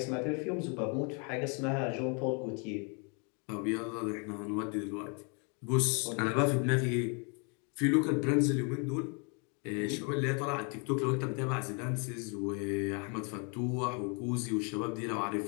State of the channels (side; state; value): right; quieter; 35.7 dB